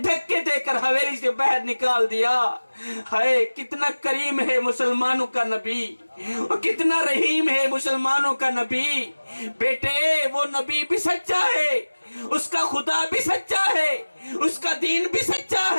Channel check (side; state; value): both; inverted; correlation -1.00